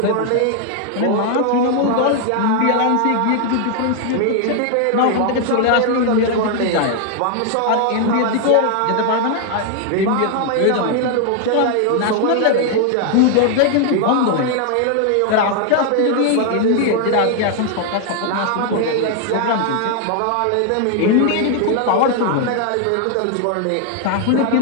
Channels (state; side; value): different; both; correlation 0.00